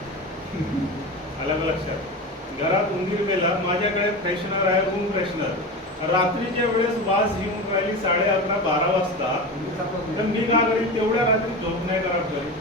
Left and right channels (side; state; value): both; normal; correlation 0.26